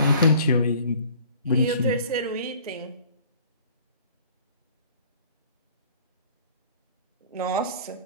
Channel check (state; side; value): inverted; both; correlation -0.51